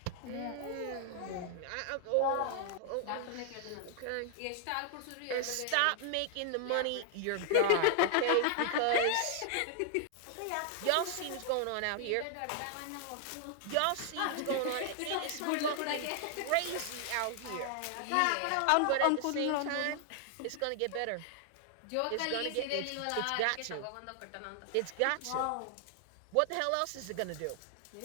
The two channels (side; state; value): both; different; correlation 0.00